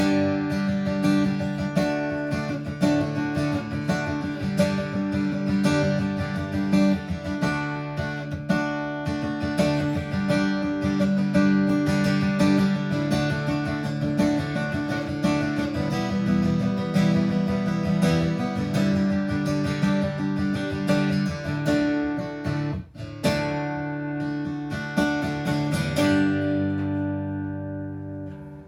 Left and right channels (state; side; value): identical; both; correlation 1.00